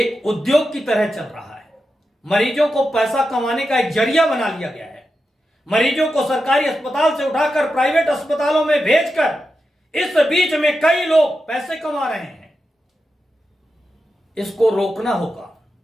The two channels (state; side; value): normal; both; correlation 0.89